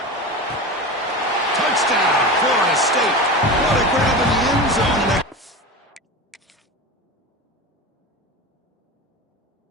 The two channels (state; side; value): normal; both; correlation 0.27